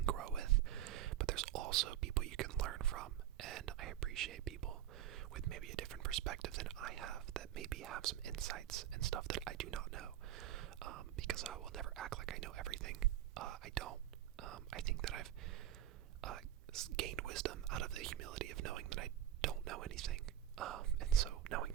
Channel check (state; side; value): quieter; left; 11.7 dB